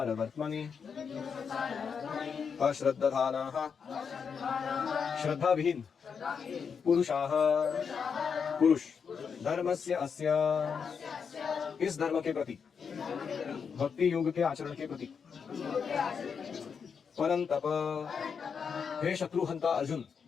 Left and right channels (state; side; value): quieter; right; 6.3 dB